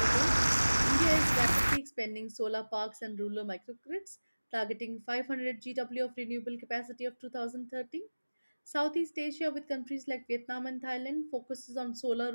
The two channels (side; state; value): both; inverted; correlation -1.00